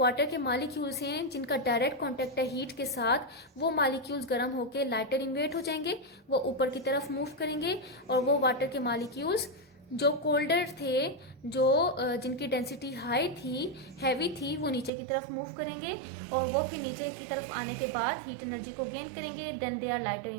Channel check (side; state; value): left; drops out; at 14.9 s